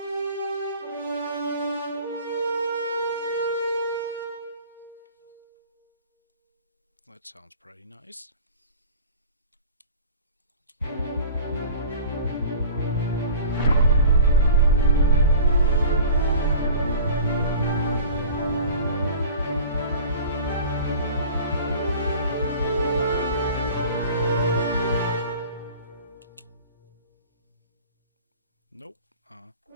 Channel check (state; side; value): inverted; both; correlation -0.42